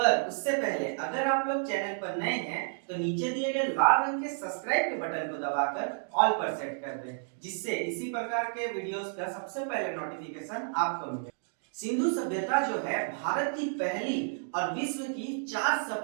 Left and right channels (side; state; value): left; silent; digital silence